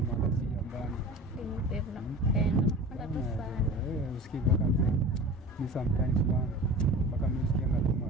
Sometimes mpaka msikia ngoma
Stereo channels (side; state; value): both; normal; correlation 0.37